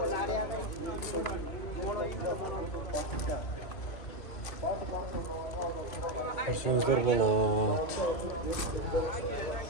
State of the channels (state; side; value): late; right; 2.6 ms